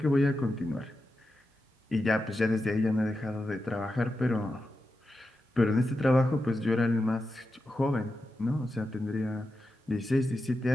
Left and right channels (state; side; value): normal; both; correlation 0.89